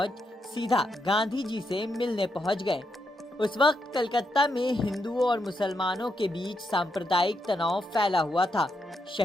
सीधा गांधी जी से मिलने पहुंच गए। उस वक्त कलकत्ता में हिंदुओं और मुसलमानों के बीच सांप्रदायिक तनाव फैला हुआ था।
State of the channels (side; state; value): both; normal; correlation 0.82